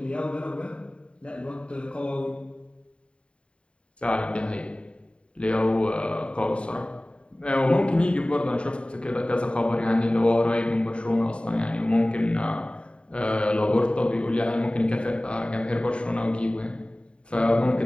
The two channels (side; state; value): right; late; 0.056 ms